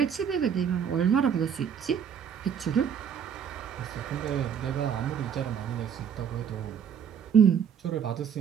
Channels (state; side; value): quieter; left; 7.9 dB